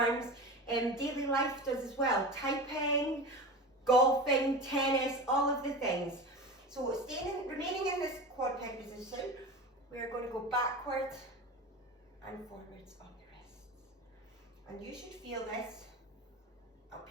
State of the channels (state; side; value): normal; both; correlation 0.29